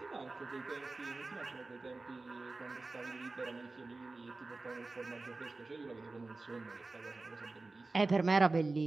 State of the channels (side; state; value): left; quieter; 3.4 dB